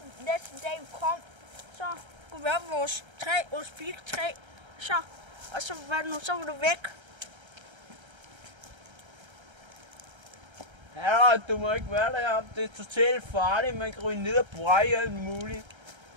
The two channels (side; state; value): left; late; 1.3 ms